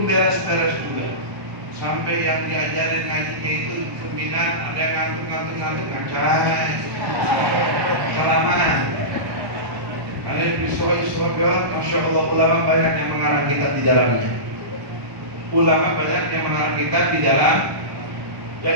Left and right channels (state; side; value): late; left; 1.1 ms